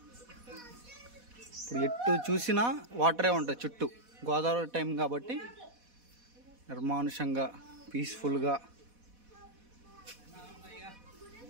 ఇప్పుడు ఎటు చూసినా వాటరే ఉంటుంది చుట్టూ. గోదావరి టైం కాబట్టి నిర్మానుషంగా పీస్ఫుల్గా.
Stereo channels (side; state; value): left; late; 4.1 ms